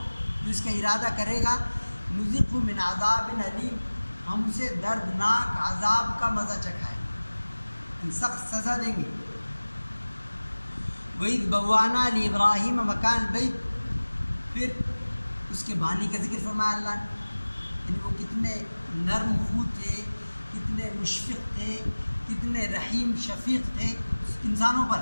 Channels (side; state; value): both; inverted; correlation -1.00